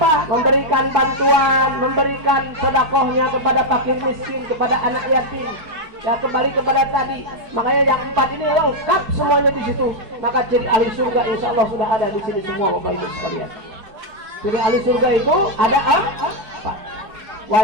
Memberikan bantuan, memberikan sedekahnya kepada fakir miskin, kepada anak yatim. Ya, kembali kepada tadi. Makanya yang 4 ini lengkap semuanya di situ. Maka ciri ahli surga insya Allah sudah ada di sini semua, Bapak Ibu sekalian. Ciri ahli surga itu ada apa?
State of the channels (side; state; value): left; late; 4.7 ms